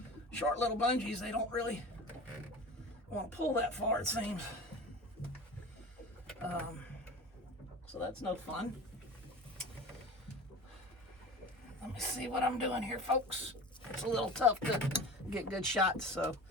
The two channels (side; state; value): both; normal; correlation 0.35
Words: short little bungees. They don't really want to pull that far, it seems. So that's no fun. Let me see what I'm doing here, folks. It's a little tough to get good shots, so